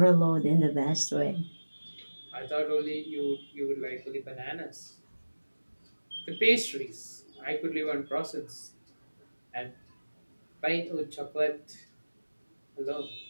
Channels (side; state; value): both; inverted; correlation -1.00